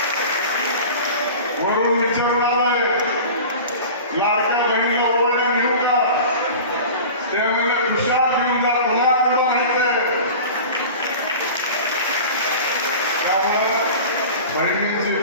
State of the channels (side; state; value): both; inverted; correlation -0.36